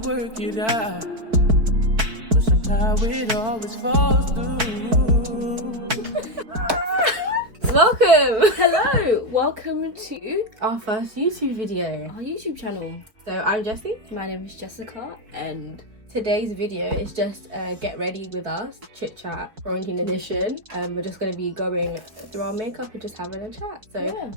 to work it out, but somehow it always falls through. Welcome! Hello! Welcome to Our first YouTube video. our YouTube channel. So I'm Jessie. My name is Jessica and Today's video is just get ready with us, chit chat, quarantine edition. We're just going to be going through our makeup and just having a chat. So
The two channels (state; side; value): late; left; 4.5 ms